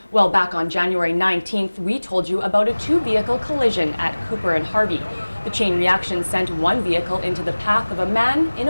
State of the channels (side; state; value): both; inverted; correlation -1.00